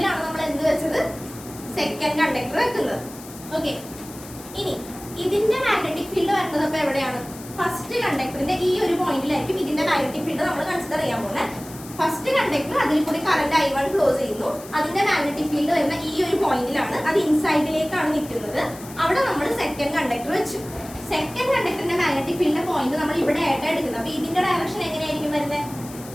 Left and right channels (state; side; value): noise; left; hiss, 17 dB below the sound